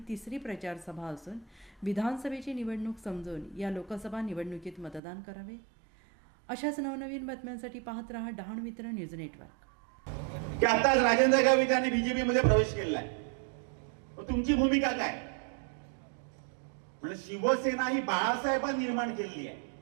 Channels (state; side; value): drops out; left; at 5.0 s